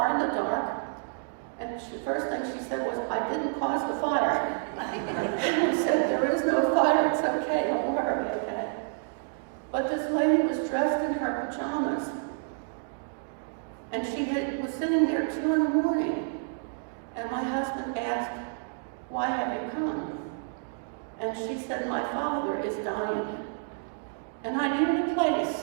in the dark, and the first thing she said was, I didn't cause the fire. I said, there is no fire, it's okay, don't worry, okay? But this lady was dressed in her pajamas, and she was sitting there 2 in the morning. And my husband asked, why have you come? And she said, my father is dying, and I needed a place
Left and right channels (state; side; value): silent; left; digital silence